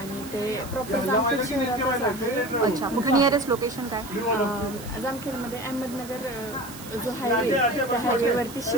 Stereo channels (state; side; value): noise; right; hiss, 15 dB below the sound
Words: ते प्रॉपर जामखेड शहरातच आहे. अच्छा, कुठे नियरेस्ट लोकेशन काय? जामखेडमध्ये अहमदनगर जो हायवे, त्या हायवेवरती